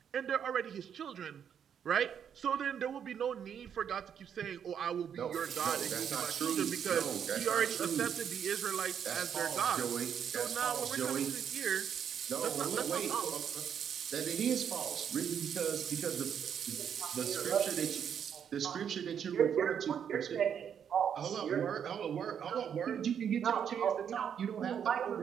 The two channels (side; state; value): left; quieter; 8.2 dB